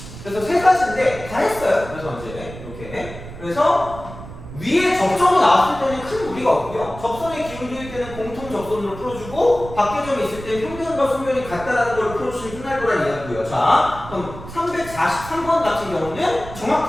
그래서 세 가지인데 다 했어요. 그래서 이제 이렇게 그래서 위에 접점이 나왔을 때는 큰 무리가 없고요. 접선의 기울기일 때는 공통 접선으로 풀어주고 밖에점이 있을 때 평면과 소면이 같다라는 걸 풀어주시면 끝날 거란 이야기고요. 자, 그럼 343번 같은 경우는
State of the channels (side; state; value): right; noise; rumble, 13 dB below the sound